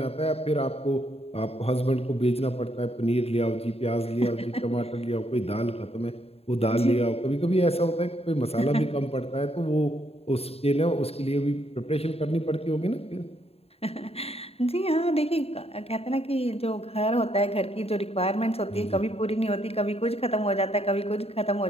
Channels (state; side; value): late; right; 0.29 ms